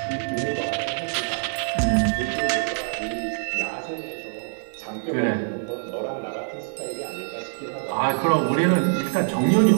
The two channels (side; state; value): left; silent; 62 dB below the other